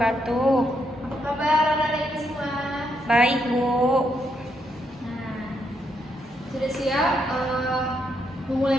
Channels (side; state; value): both; normal; correlation 0.77